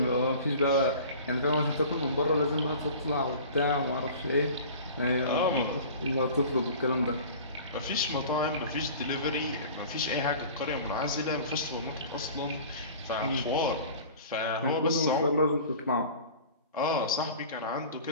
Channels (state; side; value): inverted; both; correlation -0.41